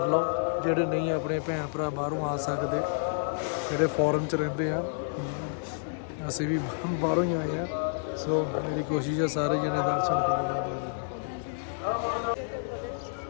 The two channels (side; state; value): right; silent; digital silence